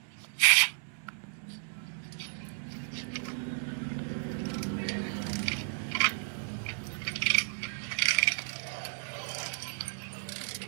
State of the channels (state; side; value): silent; left; 56 dB below the other